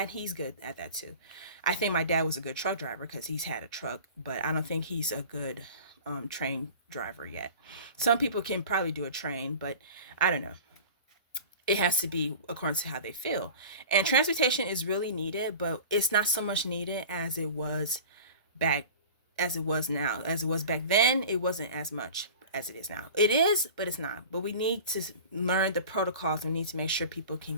he's good at that too. I think my dad was a good truck driver because he's had a truck, but I don't think he's a good train driver yet. Some people can probably do a train, but I don't know. It has to be according to how they feel. And transportation is really needed, but it's not so much needed back as it was now. As it was back then, it wasn't as much as it is now. It is, but it's not. But we need to learn the protocols. We need to make sure people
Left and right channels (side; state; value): both; inverted; correlation -0.38